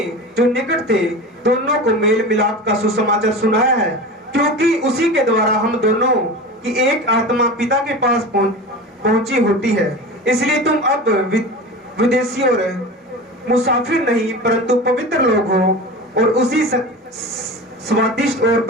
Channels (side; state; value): both; normal; correlation 0.31